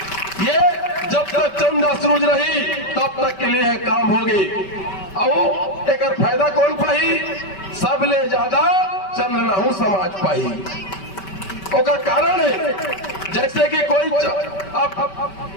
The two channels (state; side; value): late; right; 5.2 ms